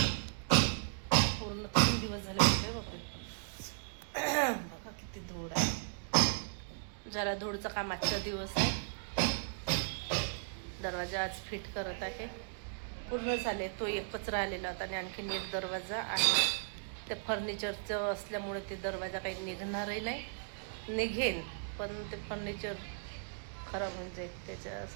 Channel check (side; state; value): left; silent; digital silence